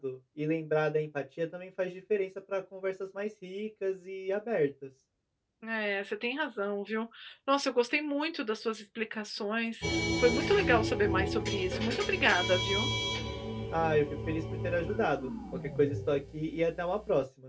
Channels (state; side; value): identical; both; correlation 1.00